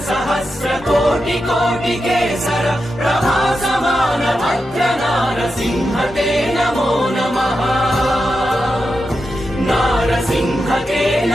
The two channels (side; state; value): both; normal; correlation 0.88